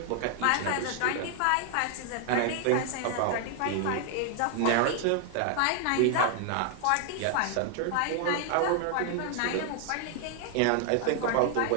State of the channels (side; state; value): both; different; correlation 0.00